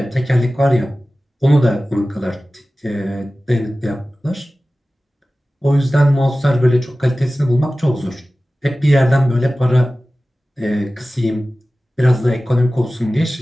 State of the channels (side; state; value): both; normal; correlation 0.96